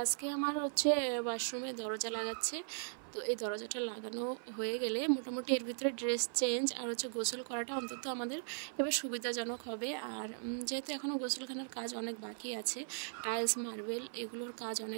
আজকে আমার ওয়াশরুমে দরজা লাগাচ্ছে। তো এই দরজাটা লাগানো হয়ে গেলে মোটামুটি এর ভিতরে ড্রেস চেঞ্জ আর গোসল করাটা অন্তত আমাদের এবার সুবিধাজনক হবে। আর যেহেতু এখনও গোসলখানার কাজ অনেক বাকি আছে, টাইলস মার্বেল এগুলোর কাজ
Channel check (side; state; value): left; silent; 52 dB below the other